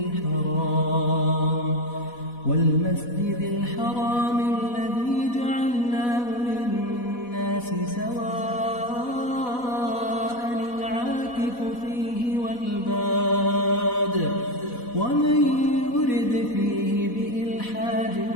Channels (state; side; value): late; right; 4.1 ms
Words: والمسجد الحرام الذي جعلناه للناس سواء العاكف فيه والباد ومن يرد فيه بإلحاد